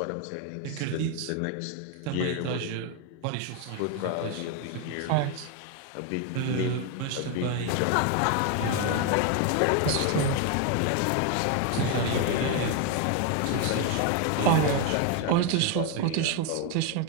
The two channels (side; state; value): both; different; correlation 0.01